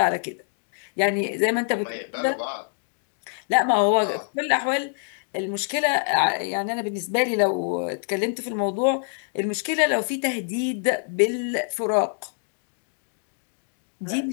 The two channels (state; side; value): silent; right; digital silence